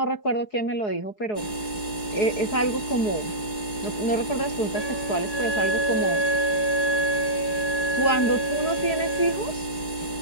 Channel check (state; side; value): late; right; 4.7 ms